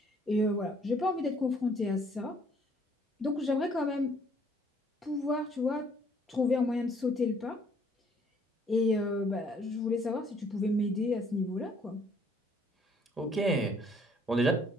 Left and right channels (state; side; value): normal; both; correlation 0.63